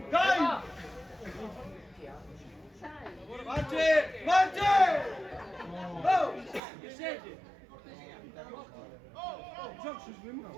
Dai! Marte! Marte! Oh! Che siete? Gioco su swim.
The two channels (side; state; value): left; drops out; at 6.6 s